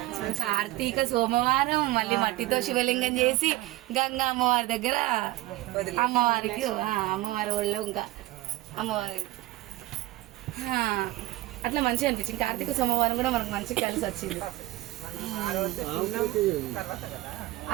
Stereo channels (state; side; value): quieter; left; 18.0 dB